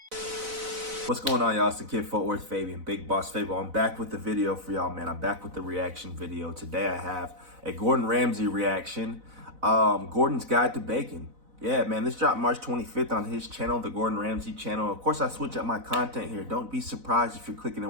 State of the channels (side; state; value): left; late; 4.0 ms